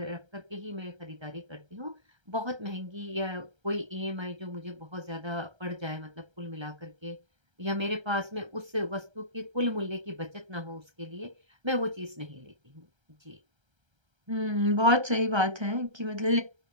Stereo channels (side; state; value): left; late; 1.3 ms